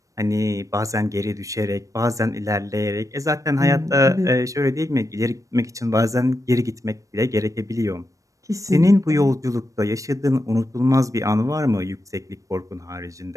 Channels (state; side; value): late; left; 0.16 ms